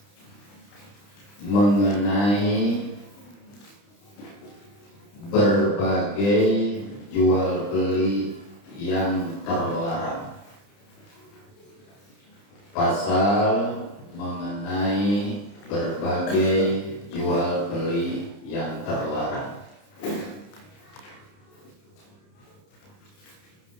mengenai berbagai jual beli yang terlarang. Pasal mengenai berbagai jual beli yang terlarang.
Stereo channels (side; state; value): right; late; 30 ms